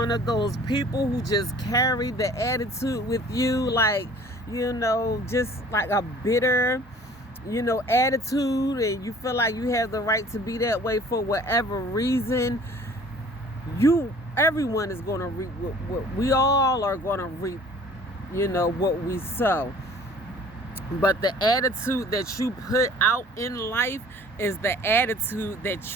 of those people who just carry the attitude with you, like, just like a bitter attitude, and you feel like you have the right to be that way for whatever reason, everyone is going to reap what we all are going to reap, what we sow. But the attitude that you put out in life is the attitude that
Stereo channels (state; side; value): normal; both; correlation 0.51